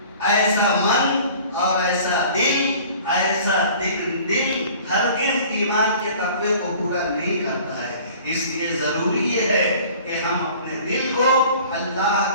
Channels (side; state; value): both; inverted; correlation -0.47